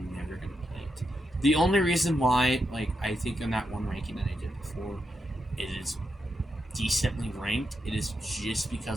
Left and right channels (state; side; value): normal; both; correlation 0.84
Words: never going to play it. The only reason why, like, I think in that one ranking that I did before, it is decently ranked, it is just